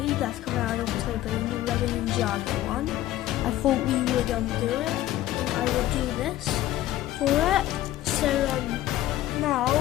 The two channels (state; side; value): quieter; right; 14.3 dB